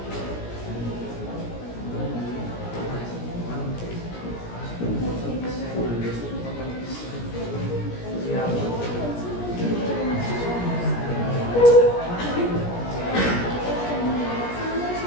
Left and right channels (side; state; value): right; late; 17 ms